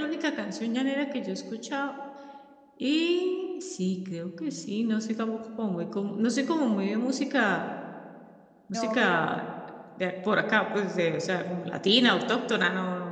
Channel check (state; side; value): identical; both; correlation 1.00